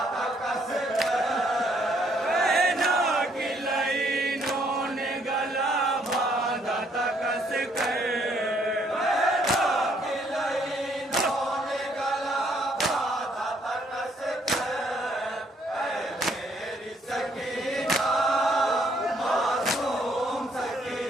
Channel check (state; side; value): normal; both; correlation 0.68